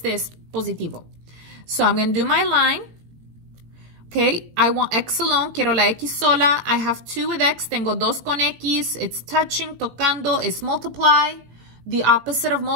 es positivo. So I'm going to do my line. Okay, I want X alone, quiero la X sola. I have 2 with X, tengo 2 con X. It's touching, tocando, es multiply. The opposite of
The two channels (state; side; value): late; left; 18 ms